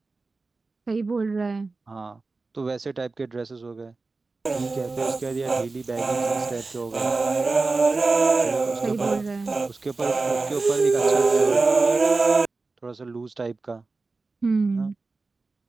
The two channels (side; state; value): left; quieter; 3.7 dB